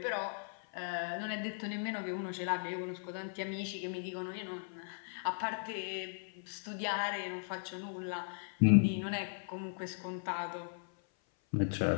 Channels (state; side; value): silent; right; 53 dB below the other